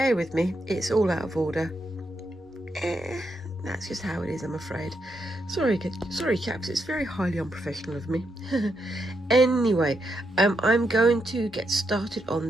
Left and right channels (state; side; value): normal; both; correlation 0.81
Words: with me. It's all out of order. That's just how it is, I'm afraid. Sorry chaps, it's very highly unprofessional of me. Anyway, I'm going to get started